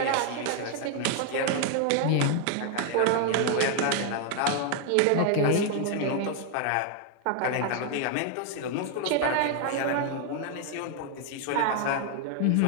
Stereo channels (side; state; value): both; different; correlation 0.00